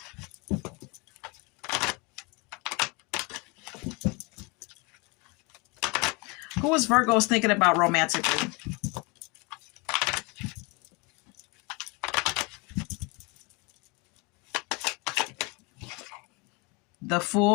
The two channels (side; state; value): right; quieter; 28.8 dB